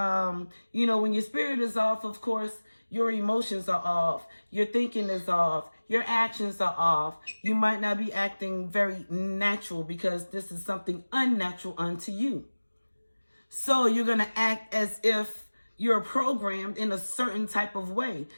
your spirit is off, of course, your emotions are off. Your thinking is off. Your actions are off. You might not be acting very natural because this is something unnatural unto you. So you're going to act as if you're programmed in a certain type of way.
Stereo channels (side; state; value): both; inverted; correlation -1.00